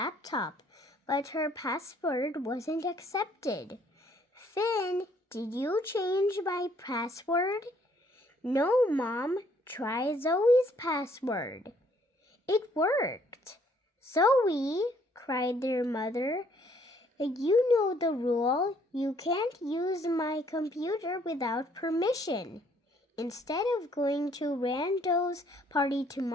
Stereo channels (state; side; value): normal; both; correlation 0.64